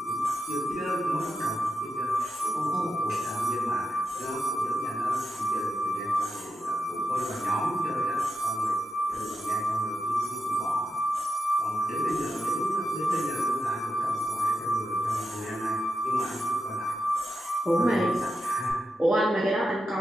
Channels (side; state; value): both; normal; correlation 0.87